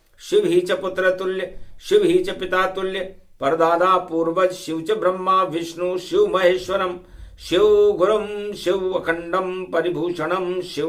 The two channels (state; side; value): identical; both; correlation 1.00